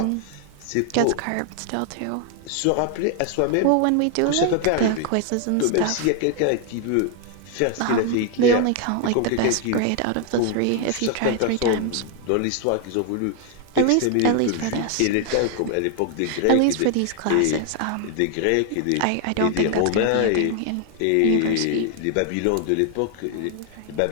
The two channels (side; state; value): both; different; correlation 0.00